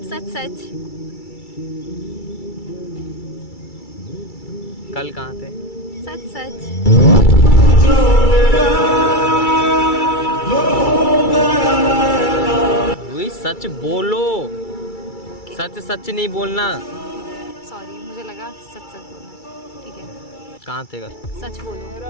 सच सच। कल कहाँ थे? सच सच। रूही सच बोलो, सच सच नहीं बोलना। सॉरी, मुझे लगा सच सच बोलना। ठीक है, कहाँ थे कल? सच बोलो।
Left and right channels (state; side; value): late; right; 2.3 ms